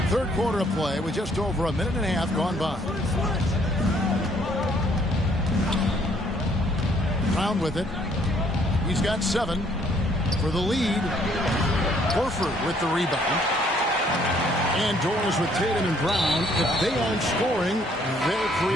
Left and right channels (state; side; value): normal; both; correlation 0.64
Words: Third quarter of play with just over a minute and a half gone by. Brown with it. He's got 7 for the lead. Horford with the rebound. And doors with Tatum and Brown. If they aren't scoring, they're